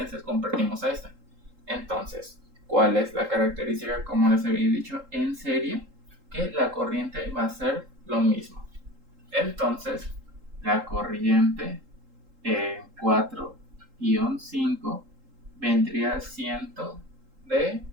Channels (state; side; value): late; left; 3.8 ms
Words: convertimos a esta. Entonces, ¿cuál es la característica? Como les había dicho, en serie, que la corriente va a ser lo mismo. Entonces, la corriente en 4-5 vendría siendo de